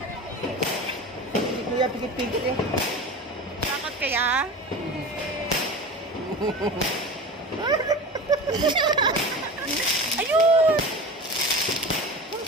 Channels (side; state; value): both; normal; correlation 0.31